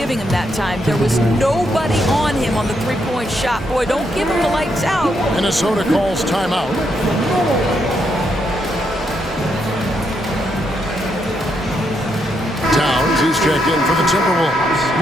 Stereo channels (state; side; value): normal; both; correlation 0.78